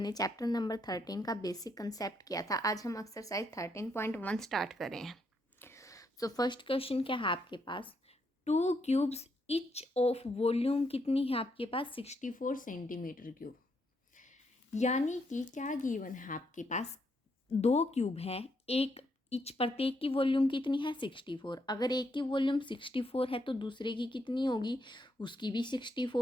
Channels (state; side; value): normal; both; correlation 0.76